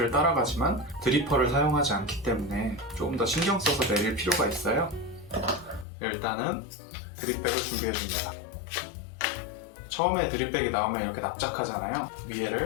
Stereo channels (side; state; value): right; drops out; at 5.9 s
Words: 따라가지만 드리퍼를 사용하지 않기 때문에 조금 더 신경 써서 내릴 필요가 있어요. 일단은 드립백을 준비해줍니다. 처음에 드립백이 나오면 이렇게 납작하잖아요.